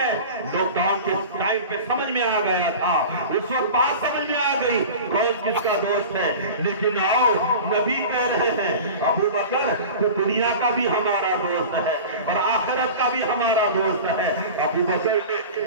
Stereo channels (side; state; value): both; inverted; correlation -0.35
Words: لاک ڈاؤن کے ٹائم پہ سمجھ میں آ گیا تھا، اس وقت بات سمجھ میں آ گئی کون کس کا دوست ہے۔ لیکن آؤ نبی کہہ رہے ہیں ابو بکر تو دنیا کا بھی ہمارا دوست ہے اور آخرت کا بھی ہمارا دوست ہے۔ ابو بکر نے